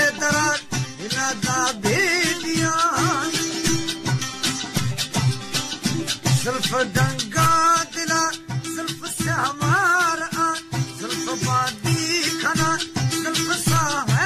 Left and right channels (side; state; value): both; identical; correlation 1.00